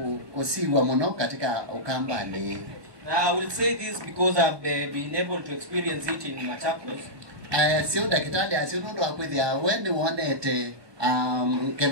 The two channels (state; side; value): late; left; 1.1 ms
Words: kusiwa muno katika Ukambani. I will say this because I've been able to experience it in Machakos. Sio dakitali asinundo akwithia wende wonete